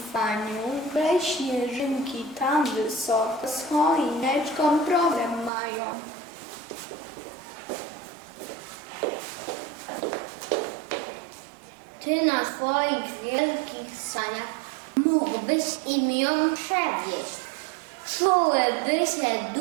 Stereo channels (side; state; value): left; drops out; at 5.5 s